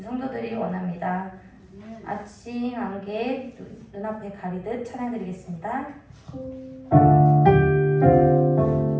성도들이 원합니다. 아침 안개 눈앞에 가리듯 찬양 드리겠습니다.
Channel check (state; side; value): identical; both; correlation 1.00